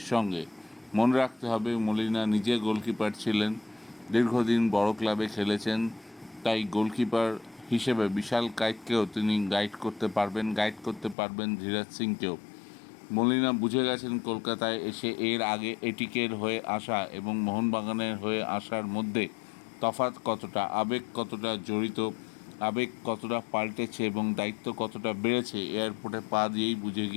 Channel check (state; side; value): drops out; right; at 11.2 s